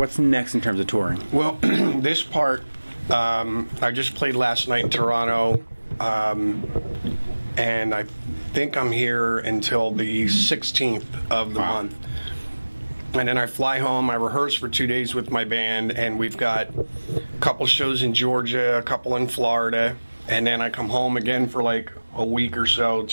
next in terms of touring? Well, this part, I just played last night in Toronto, and I think I'm here until the 16th of the month. And then I fly home, I rehearse for 2 days with my band, and we've got a couple shows in Georgia, a couple in Florida, and then I come home again for like a week or so,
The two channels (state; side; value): inverted; both; correlation -1.00